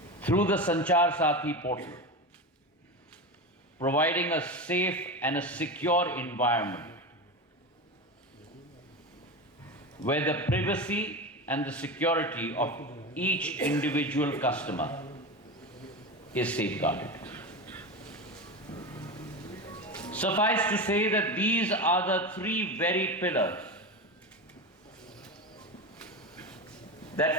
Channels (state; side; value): normal; both; correlation 0.22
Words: through the SANCHAR SATHI portal, providing a safe and a secure environment where the privacy and the security of each individual customer is safeguarded. Suffice to say that these are the three very pillars